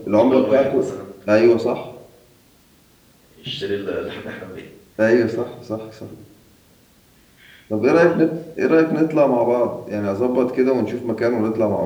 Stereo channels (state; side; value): identical; both; correlation 1.00